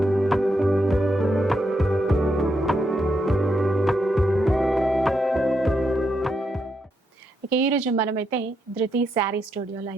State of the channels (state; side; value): normal; both; correlation 0.81